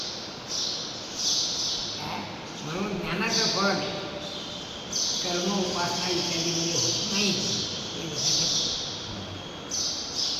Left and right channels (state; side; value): identical; both; correlation 1.00